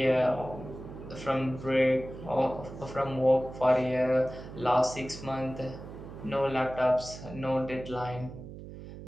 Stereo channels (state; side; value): noise; right; hum, 13 dB below the sound